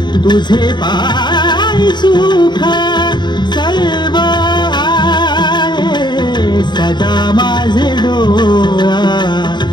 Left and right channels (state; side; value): late; right; 0.21 ms